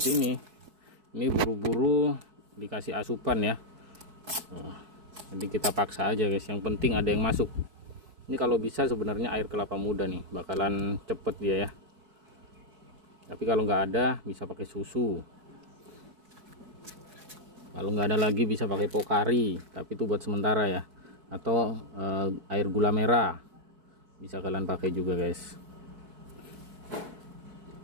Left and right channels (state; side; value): late; left; 4.6 ms